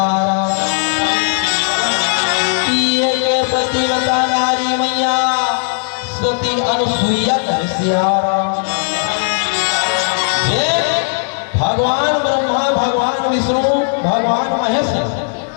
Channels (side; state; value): right; silent; 58 dB below the other